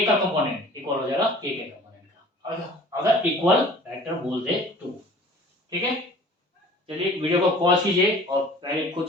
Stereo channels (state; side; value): normal; both; correlation 0.47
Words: का कंपोनेंट इक्वल हो जाएगा k के कंपोनेंट का। अगर इक्वल वेक्टर बोल दे तो, ठीक है। चलिए वीडियो को पॉज कीजिए और पहले खुद